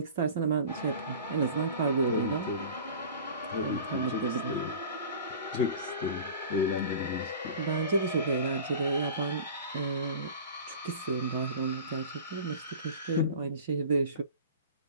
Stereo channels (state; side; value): inverted; both; correlation -0.39